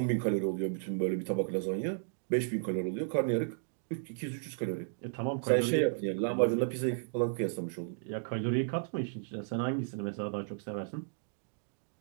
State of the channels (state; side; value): silent; left; digital silence